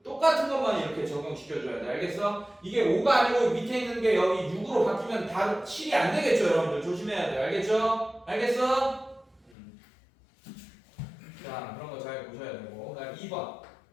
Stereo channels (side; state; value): right; drops out; at 9.5 s